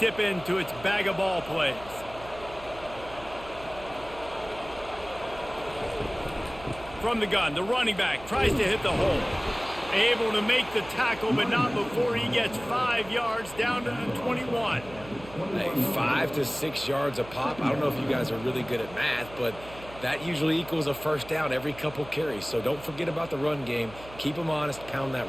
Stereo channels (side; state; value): right; noise; hum, 17 dB below the sound